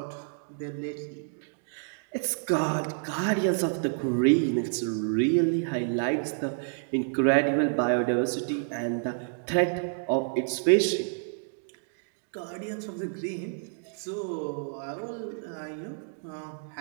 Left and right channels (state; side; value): silent; left; digital silence